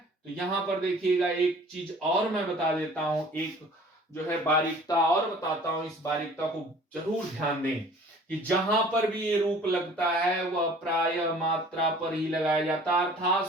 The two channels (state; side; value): normal; both; correlation 0.49